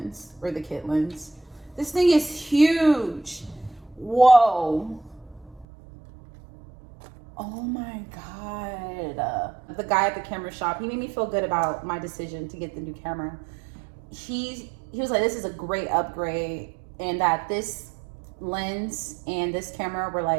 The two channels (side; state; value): left; drops out; at 5.7 s